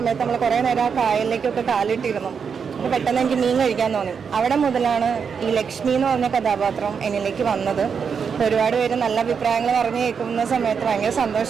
നമ്മൾ കുറേ നേരം ആ കായലിലേക്കൊക്കെ കാലിട്ടിരുന്നു. അപ്പോൾ പെട്ടെന്ന് എനിക്ക് മീൻ കഴിക്കാൻ തോന്നി. അവിടെ മുതലാണ് ഈ ലക്ഷ്മി എന്ന് പറഞ്ഞ കഥാപാത്രം എന്നിലേക്ക് വന്നത്. ഒരുപാട് പേര് നല്ല അഭിപ്രായങ്ങൾ പറഞ്ഞു കേൾക്കുന്ന സമയത്ത് ഭയങ്കര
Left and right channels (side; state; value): left; quieter; 6.4 dB